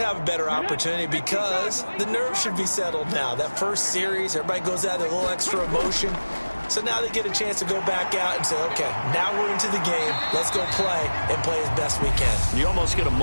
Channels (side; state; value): both; inverted; correlation -1.00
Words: a better opportunity because the nerves should be settled now. That first series, everybody goes out with a little extra emotion. So now they get a chance to go back out and say, okay, now we're into the game. Let's go play and play as best we can. You almost get a